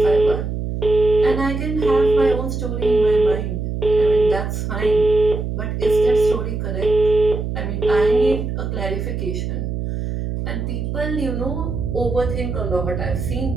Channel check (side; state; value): right; noise; hum, 4 dB below the sound